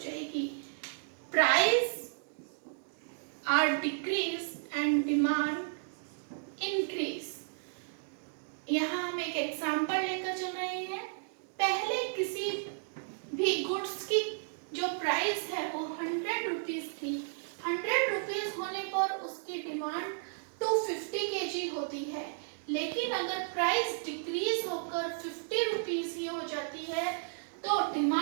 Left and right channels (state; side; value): silent; left; digital silence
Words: जाएगी. Price are decrease and demand increase. यहाँ हम एक एग्जाम्पल लेकर चल रहे हैं. पहले किसी भी गुड्स की जो प्राइस है वो 100 रुपीज थी. 100 रुपीज होने पर उसकी डिमांड 250 kg होती है. लेकिन अगर प्राइस डिक्रीज होकर 50 रुपीज ही हो जाती है तो